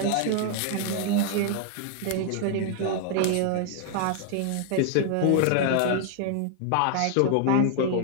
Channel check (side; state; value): both; different; correlation 0.00